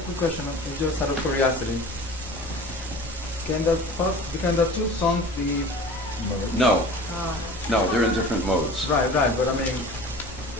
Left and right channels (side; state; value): both; normal; correlation 0.40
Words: question, just out of curiosity. Can the two songs be... No. No, they're in different modes. Right, but I mean...